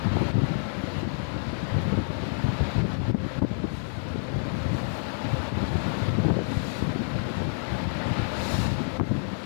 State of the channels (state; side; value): silent; right; digital silence